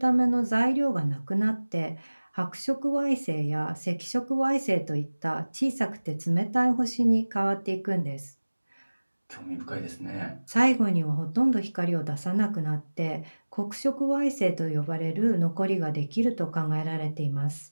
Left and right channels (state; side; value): inverted; both; correlation -1.00